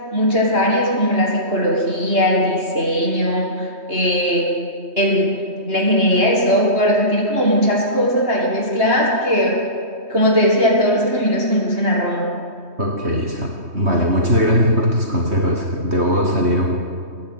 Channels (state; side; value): late; left; 3.2 ms